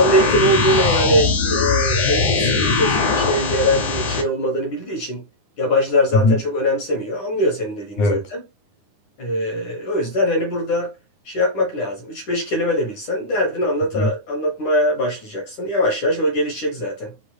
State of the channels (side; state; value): right; late; 9.7 ms